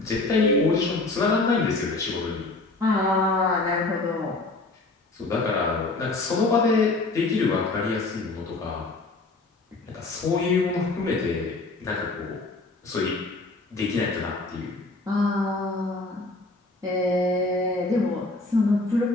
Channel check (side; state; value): right; quieter; 3.3 dB